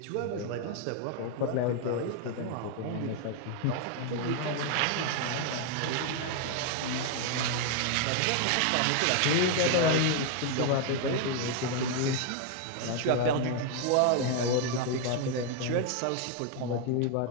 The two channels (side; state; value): both; different; correlation 0.01